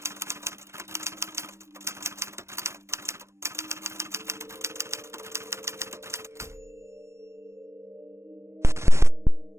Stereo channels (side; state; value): left; late; 0.13 ms